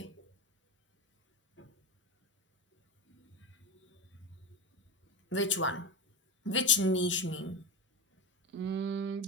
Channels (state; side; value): normal; both; correlation 0.17